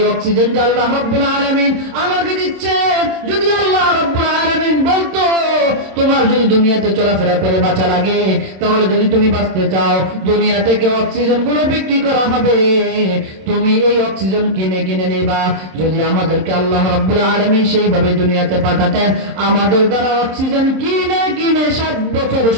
অক্সিজেন যে আল্লাহ রব্বুল আলামিন আমাকে দিচ্ছে, যদি আল্লাহ রব্বুল আলামিন বলতো তোমার যদি দুনিয়াতে চলাফেরা করে বাঁচা লাগে, তাহলে যদি তুমি বাঁচতে চাও দুনিয়া থেকে অক্সিজেন গুলো বিক্রি করা হবে, তুমি এই অক্সিজেন কিনে কিনে নেবা। যদি আমাদেরকে আল্লাহ রব্বুল আলামিন সেইভাবে দুনিয়াতে পাঠাতেন, আমাদের দ্বারা অক্সিজেন কিনে কিনে 60 বছর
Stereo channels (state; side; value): late; left; 26 ms